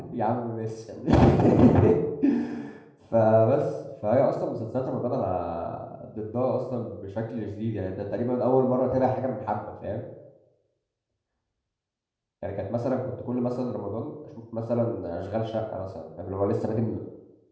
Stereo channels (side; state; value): both; identical; correlation 1.00